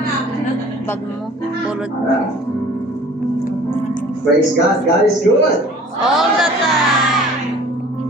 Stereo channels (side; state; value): both; normal; correlation 0.48